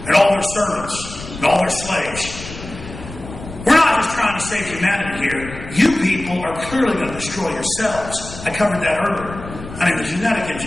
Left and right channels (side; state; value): left; noise; rumble, 13 dB below the sound